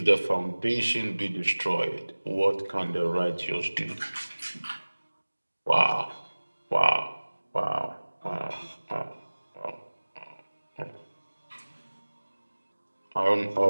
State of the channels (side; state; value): both; inverted; correlation -1.00